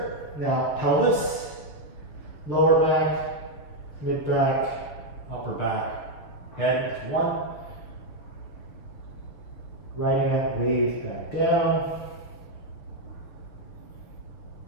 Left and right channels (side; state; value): right; late; 6.9 ms